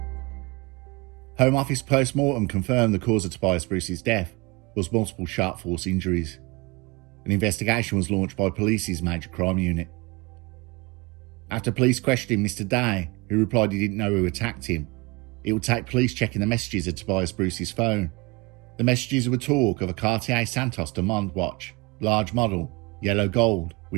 Home Office post-mortem confirmed the cause of Tobias Bruce's death was multiple sharp force injuries. An investigation was launched by police's major crime unit. After police questioned Mr. Day, who replied he didn't know who attacked him, it would take police checking the messages of Tobias Bruce's phone. The messages would talk of a Cartier Santos Demond watch, large model, yellow gold,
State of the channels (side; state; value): left; quieter; 25.9 dB